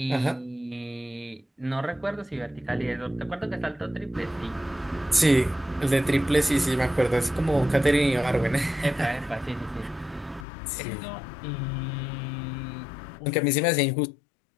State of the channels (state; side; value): drops out; right; at 10.5 s